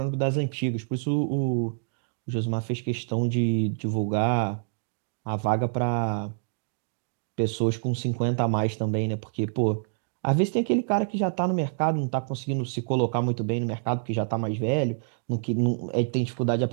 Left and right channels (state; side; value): silent; left; digital silence